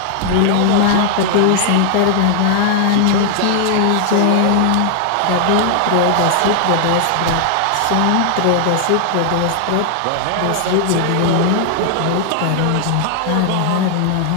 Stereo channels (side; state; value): both; different; correlation 0.00